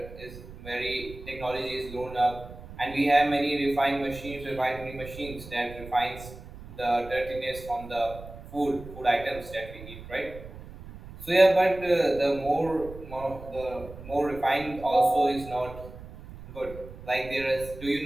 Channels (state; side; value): noise; right; rumble, 15 dB below the sound